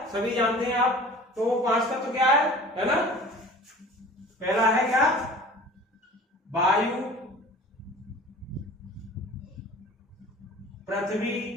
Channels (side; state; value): both; normal; correlation 0.44